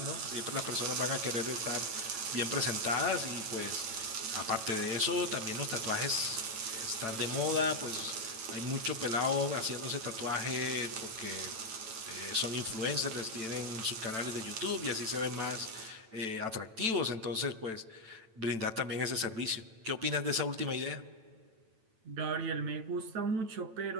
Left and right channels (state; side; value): late; left; 9.0 ms